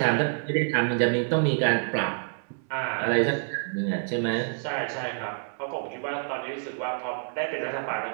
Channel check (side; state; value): left; silent; 60 dB below the other